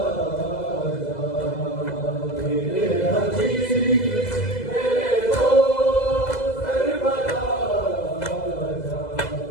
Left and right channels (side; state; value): right; late; 2.0 ms